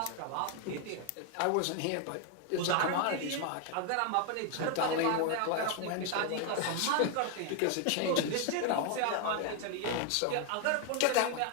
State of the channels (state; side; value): different; both; correlation 0.01